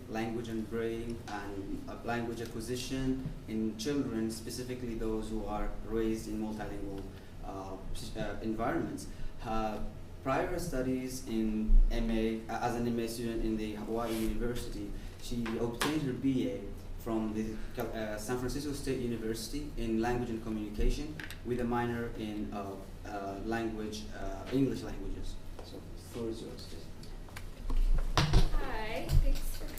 language and brain, and language acquisition in children, specifically those who are raised in multilingual environments. Her prior studies in MA, as an MA student in the Hawaii University, she obtained her BA from the San Francisco State University in language and communication with a minor in language, English languages. So the floor is yours, Jessica. Hi, thanks for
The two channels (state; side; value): identical; both; correlation 1.00